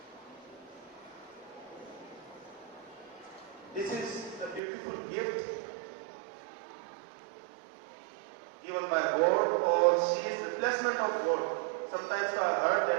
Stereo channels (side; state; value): left; drops out; at 4.6 s